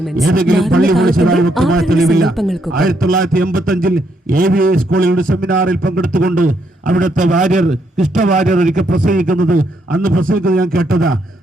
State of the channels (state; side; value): normal; both; correlation 0.75